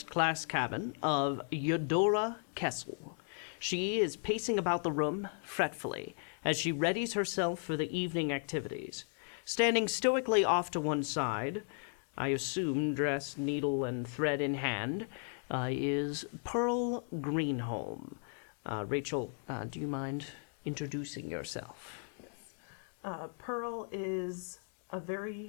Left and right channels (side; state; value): right; silent; 54 dB below the other